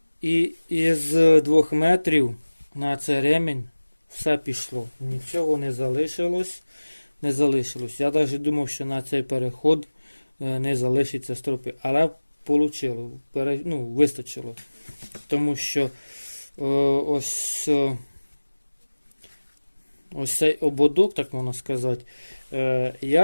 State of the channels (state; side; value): inverted; both; correlation -1.00